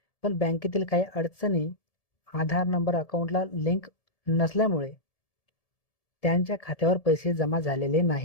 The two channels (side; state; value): right; late; 1.7 ms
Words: पण बँकेतील काही अडचणी, आधार नंबर अकाउंटला लिंक नसल्यामुळे त्यांच्या खात्यावर पैसे जमा झालेले